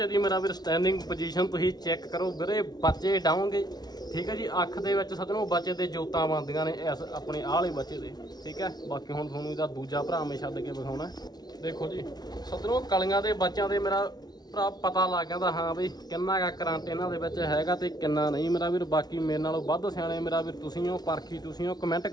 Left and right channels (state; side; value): late; right; 0.19 ms